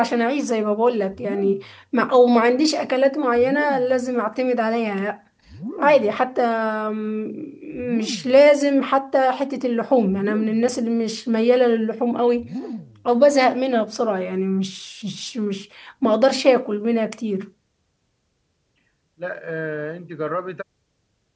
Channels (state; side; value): identical; both; correlation 1.00